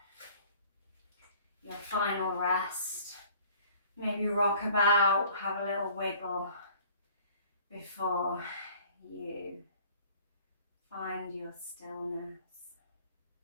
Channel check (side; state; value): both; inverted; correlation -0.52